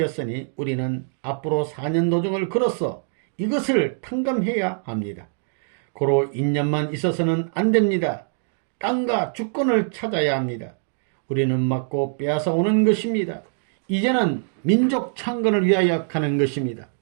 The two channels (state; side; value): silent; left; digital silence